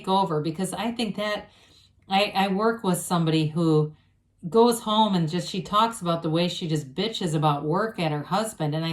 over, because I think that I work with somebody who goes home and she talks about the way she just bitches about work at her husband. And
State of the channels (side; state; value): both; identical; correlation 1.00